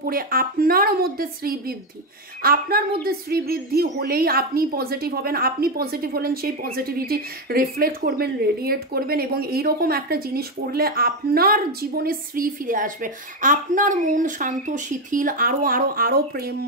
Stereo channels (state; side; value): normal; both; correlation 0.09